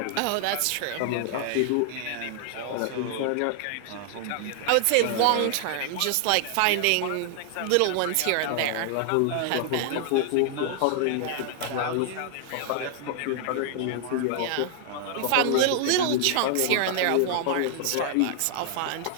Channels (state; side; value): different; both; correlation 0.00